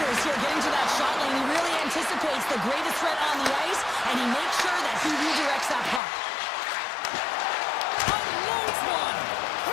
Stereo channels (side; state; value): right; drops out; at 6.0 s